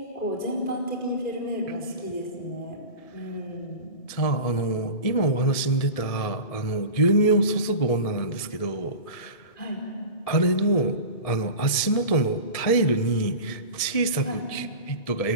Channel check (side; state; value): right; late; 1.7 ms